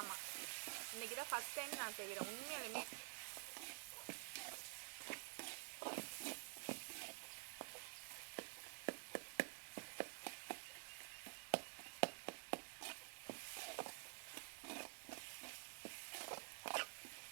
இன்றைக்கி தான் ஃபஸ்ட் டைம் நான் செய்கிறேன் உண்மையாலுமே.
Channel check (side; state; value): left; silent; digital silence